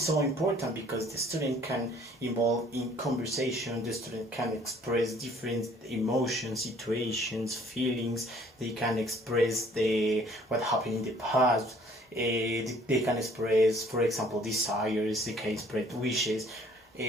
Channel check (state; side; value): normal; both; correlation 0.57